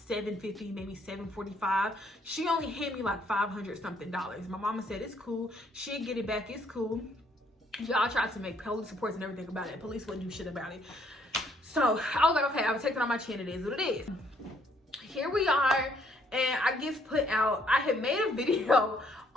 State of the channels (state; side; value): normal; both; correlation 0.67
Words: maybe $745. She only handed me like $500 something. My mama said it's cool. She'll get it back. It's cool. Y'all tried to make police reports and everything about it. Police wouldn't do shit about it. So I was like, okay, I would take it on my chin. It is what it is. Here we are, and I get put out. I had made a video